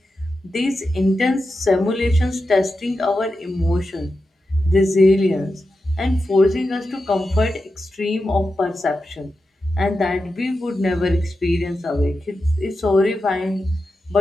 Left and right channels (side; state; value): both; normal; correlation 0.90